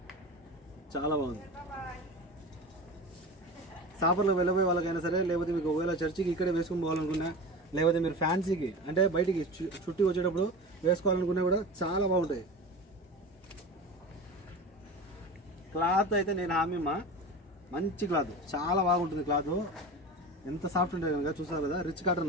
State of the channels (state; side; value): normal; both; correlation 0.31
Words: చాలా బాగుంది. సాపర్లో వెళ్ళబోయే వాళ్ళకైనా సరే, లేకపోతే మీకు ఒకవేళ చర్చికి ఇక్కడే వేసుకొని పోవాలనుకున్నా, లేకపోతే మీరు ఫ్యాన్సీకి అంటే బయటికి చుట్టి వచ్చేటప్పుడు వేసుకోవాలనుకున్నా కూడా చాలా బాగుంటాయి. క్లాత్ అయితే నేను హామీ మంచి క్లాత్, చాలా బాగుంటుంది. క్లాత్ ఎంత సాఫ్ట్ ఉంటుంది కనుక చూసారు కదా రిచ్ కాటన్